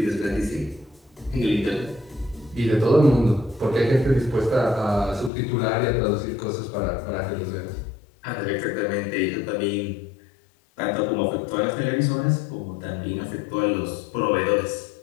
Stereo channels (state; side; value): drops out; right; at 5.3 s